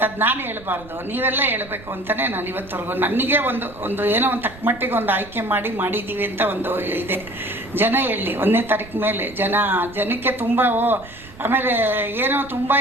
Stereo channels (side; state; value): right; noise; rumble, 19 dB below the sound